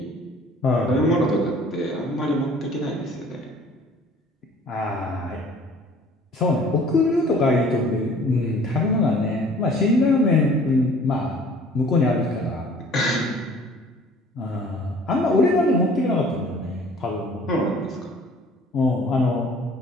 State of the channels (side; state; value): both; normal; correlation 0.51